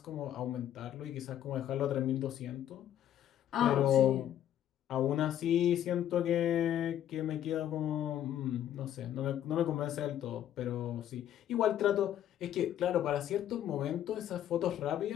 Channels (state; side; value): quieter; right; 11.1 dB